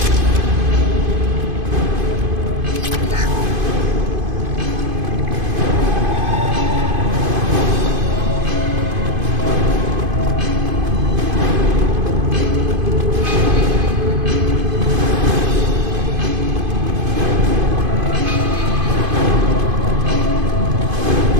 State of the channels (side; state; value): left; late; 2.5 ms